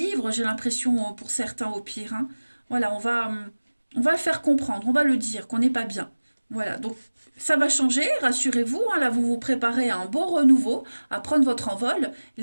j'ai l'impression, pour certains au pire. Hein. Voilà, on va le faire comprendre, on va le dire qu'on n'est pas bien. Voilà, donc ça va changer, rassurez-vous. Hein, là, vous vous préparez à un beau renouveau, à prendre votre envol,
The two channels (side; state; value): both; inverted; correlation -1.00